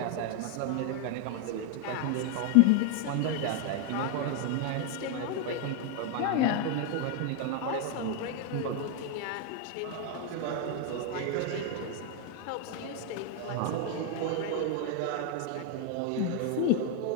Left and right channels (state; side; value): different; both; correlation 0.01